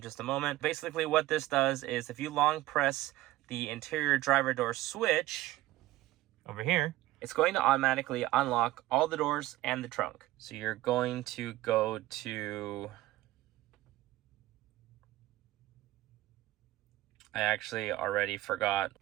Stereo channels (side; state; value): left; quieter; 16.7 dB